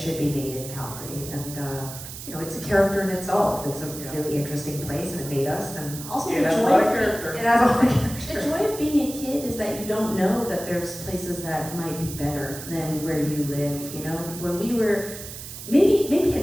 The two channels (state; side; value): noise; right; hiss, 11 dB below the sound